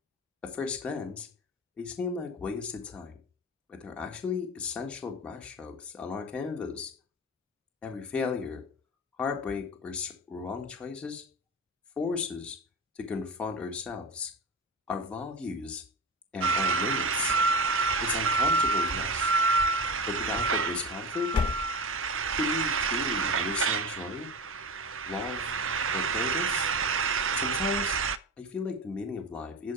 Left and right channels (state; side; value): normal; both; correlation 0.27